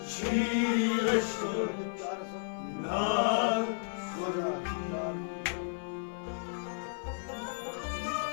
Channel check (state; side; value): silent; right; 56 dB below the other